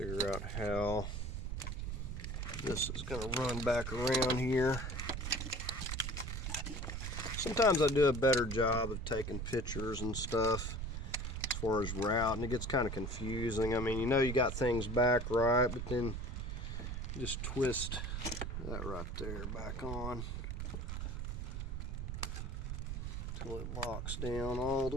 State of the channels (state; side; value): noise; right; rumble, 4 dB below the sound